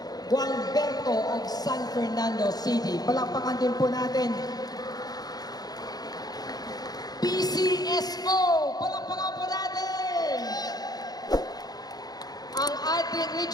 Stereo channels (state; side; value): late; right; 0.19 ms